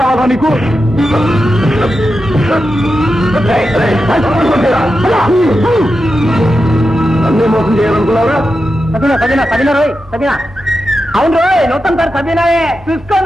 నీకు? అన్నీ మోసం చేయాలనుకున్నారా? అవును రోయ్, నూతన సార్ సబీనాయే.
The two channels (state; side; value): normal; both; correlation 0.89